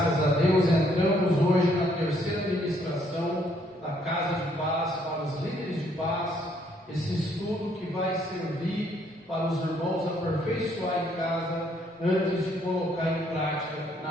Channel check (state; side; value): normal; both; correlation 0.68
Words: a Deus, entramos hoje na terceira ministração da Casa de Paz para os líderes de paz, esse estudo que vai servir para os irmãos aperfeiçoar em casa, antes de colocar em prática